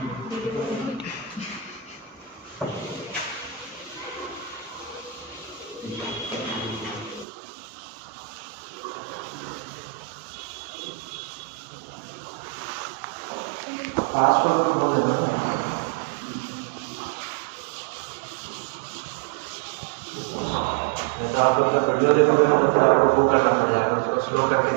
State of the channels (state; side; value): drops out; left; at 7.2 s